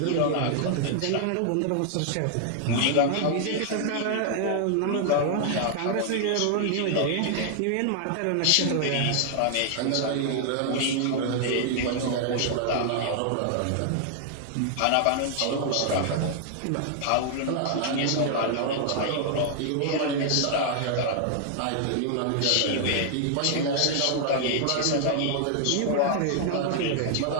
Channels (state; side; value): different; both; correlation 0.00